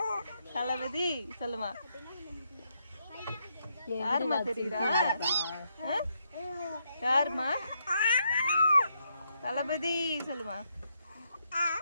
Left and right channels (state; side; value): inverted; both; correlation -0.78